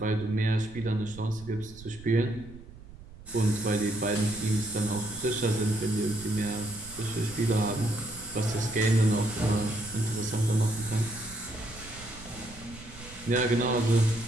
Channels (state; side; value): noise; right; rumble, 18 dB below the sound